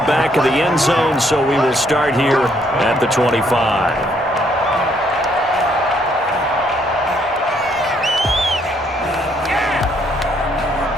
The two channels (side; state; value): both; normal; correlation 0.69